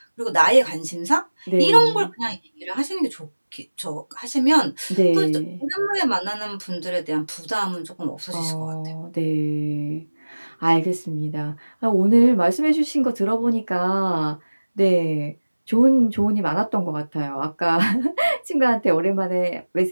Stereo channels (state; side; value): inverted; both; correlation -1.00